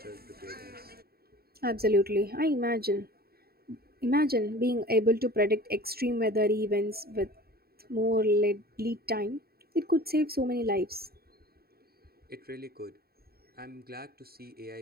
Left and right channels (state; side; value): late; left; 0.45 ms